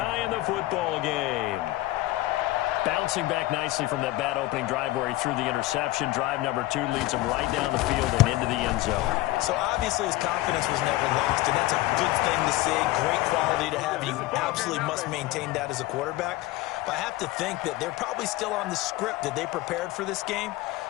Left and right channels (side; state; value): right; quieter; 17.8 dB